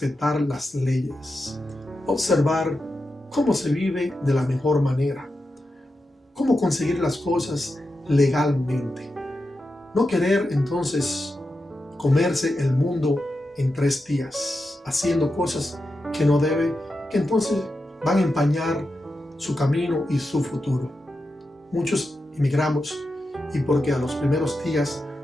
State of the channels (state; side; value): normal; both; correlation 0.89